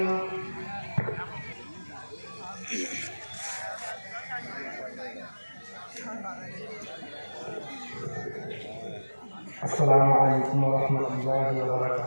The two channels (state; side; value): inverted; both; correlation -1.00